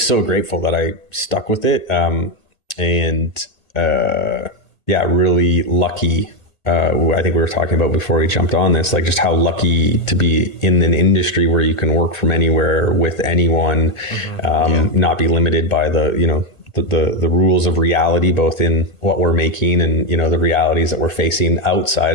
so grateful that I stuck with it. Really lucky. I think we were talking about before we jumped on this, like just how lucky to be in an industry where you can work from anywhere with anyone, not be limited by the rules of reality, both in what we're making and, the realities that we're facing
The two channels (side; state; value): right; late; 1.9 ms